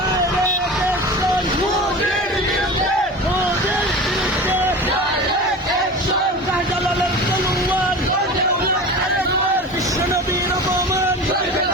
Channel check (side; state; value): both; normal; correlation 0.33